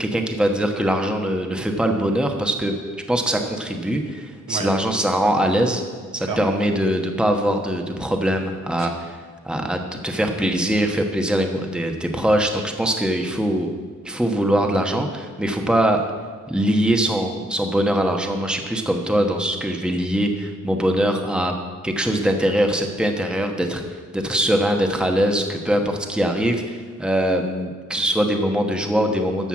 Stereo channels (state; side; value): normal; both; correlation 0.73